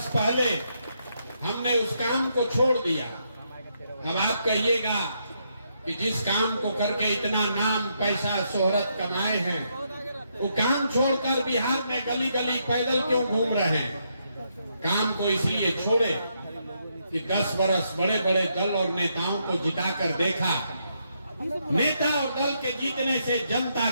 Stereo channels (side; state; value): both; inverted; correlation -0.77